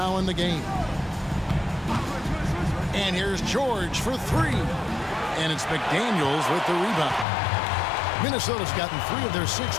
in the game. And here's George for 3. And it's McDaniels with the rebound. Minnesota's gotten 3 of their 6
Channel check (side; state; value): right; drops out; at 7.2 s